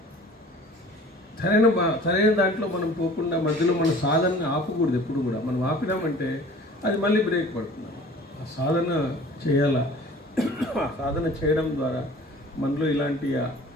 సరైన దాంట్లో మనం పోకుండా మధ్యలో మన సాధనని ఆపకూడదు. ఎప్పుడు కూడా మనం ఆపినామంటే అది మళ్ళీ బ్రేక్ పడుతుంది. ఆ సాధన చేయాల. ఆ సాధన చేయడం ద్వారా మనలో ఇలాంటి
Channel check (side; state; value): both; normal; correlation 0.46